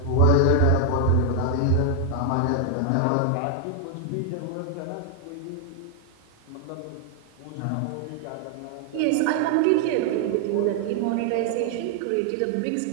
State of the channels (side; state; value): both; different; correlation 0.00